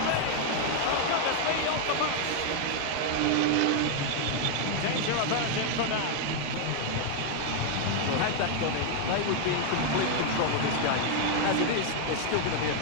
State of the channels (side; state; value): both; different; correlation 0.00